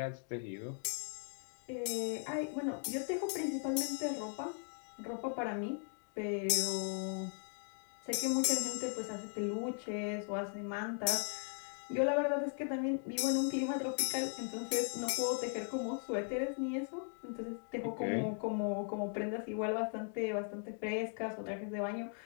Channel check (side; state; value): right; silent; 52 dB below the other